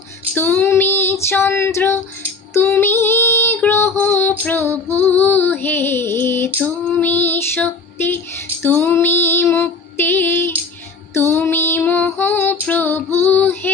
তুমি চন্দ্র, তুমি গ্রহ প্রভু হে। তুমি শক্তি, তুমি মুক্তি, তুমি মোহ প্রভু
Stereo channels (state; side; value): quieter; right; 4.2 dB